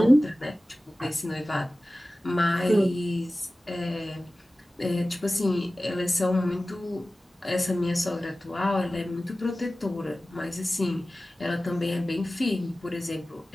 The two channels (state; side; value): normal; both; correlation 0.96